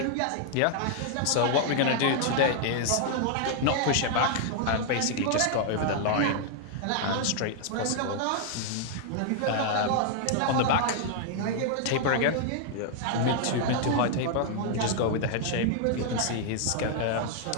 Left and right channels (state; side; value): different; both; correlation 0.00